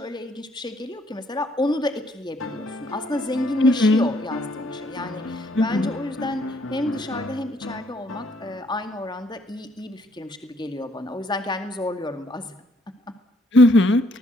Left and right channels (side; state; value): both; normal; correlation 0.67